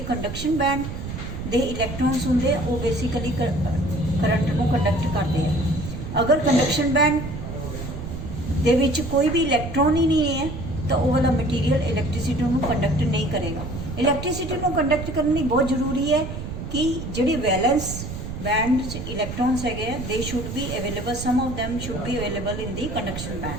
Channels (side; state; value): right; noise; rumble, 7 dB below the sound